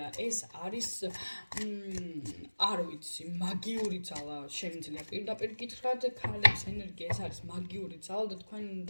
ეს არის არ ვიცი, მაგიური ძალა შემიძლია პირდაპირ გითხრათ, ქალების ენერგია ეს არის მაგიური ძალა და თქვენ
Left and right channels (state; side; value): inverted; both; correlation -1.00